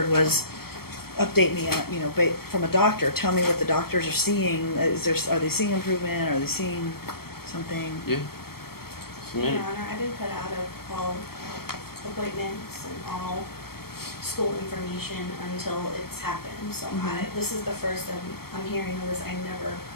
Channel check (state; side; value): late; right; 0.95 ms